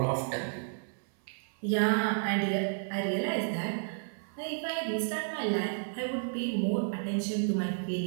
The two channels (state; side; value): silent; left; 57 dB below the other